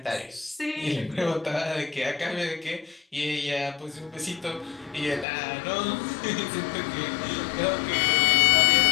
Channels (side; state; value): right; drops out; at 5.2 s